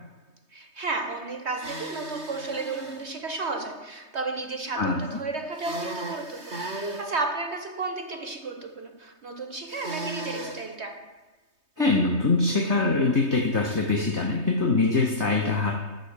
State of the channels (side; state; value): left; late; 3.2 ms